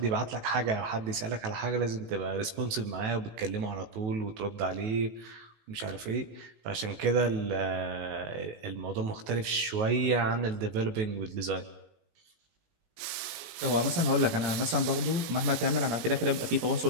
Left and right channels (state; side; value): late; left; 19 ms